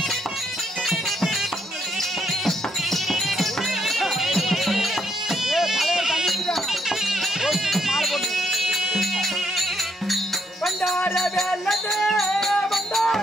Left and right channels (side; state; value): both; normal; correlation 0.73